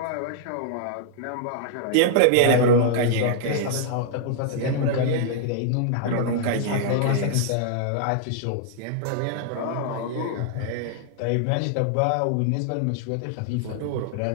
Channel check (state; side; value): different; both; correlation -0.01